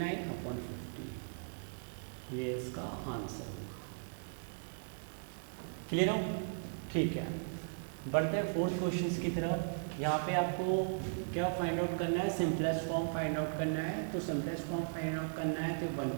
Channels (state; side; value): silent; left; digital silence